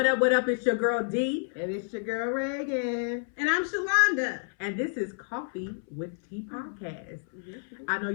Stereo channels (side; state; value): right; silent; 58 dB below the other